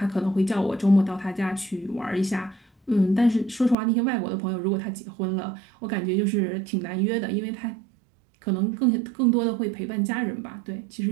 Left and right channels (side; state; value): left; drops out; at 3.8 s